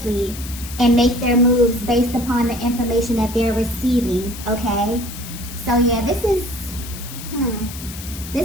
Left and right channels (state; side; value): noise; left; hiss, 12 dB below the sound